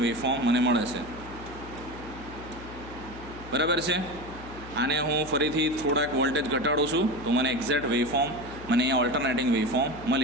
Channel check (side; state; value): left; noise; hum, 15 dB below the sound